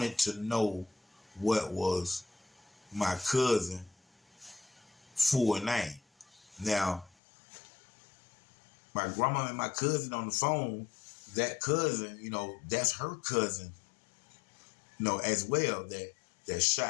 to know what was my cousin full name. Now, my grandma and my cousin on the phone, that cousin, that's her cousin, as well, that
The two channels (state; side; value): drops out; right; at 7.2 s